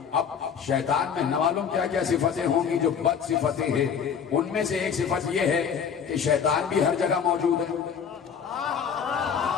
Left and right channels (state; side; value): quieter; right; 7.1 dB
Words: اب شیطان میں نہ معلوم کیا کیا صفتیں ہوں گی جو بد صفتیں ہیں، ان میں سے ایک صفت یہ ہے کہ شیطان بھی ہر جگہ موجود ہے۔